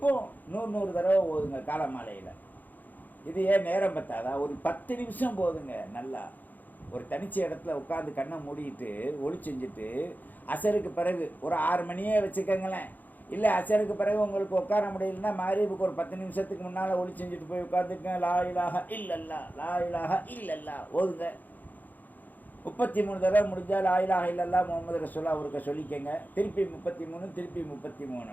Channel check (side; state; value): right; late; 0.084 ms